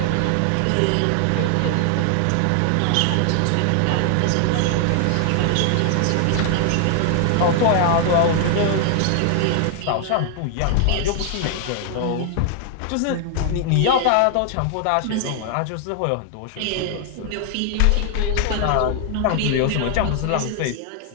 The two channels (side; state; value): both; different; correlation 0.00